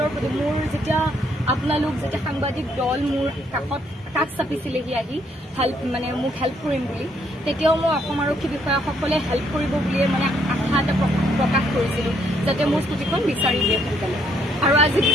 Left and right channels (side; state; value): both; normal; correlation 0.70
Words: প্ৰতি মোৰ যেতিয়া আপোনালোক যেতিয়া সাংবাদিক দল মোৰ কাষ চাপিছিলেহি আহি মানে মোক হেল্প কৰিম বুলি, তেতিয়াও মই অসম আৰক্ষী বিষয়াসকলে হেল্প কৰিব বুলিয়ে মানে আশা এটা প্ৰকাশ কৰিছিলোঁ যাতে মোৰ স্কুটিখন বিচাৰি দিয়ে সোনকালে। আৰু আজি